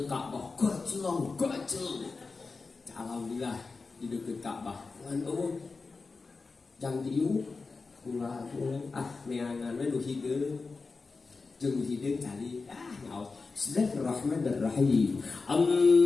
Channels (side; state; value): right; quieter; 4.2 dB